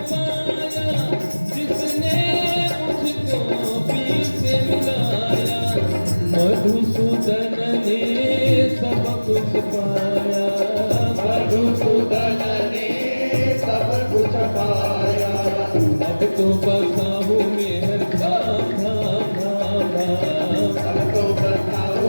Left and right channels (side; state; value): both; inverted; correlation -1.00